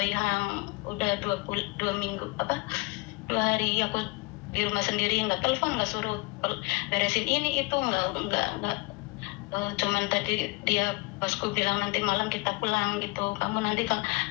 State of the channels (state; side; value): quieter; right; 25.5 dB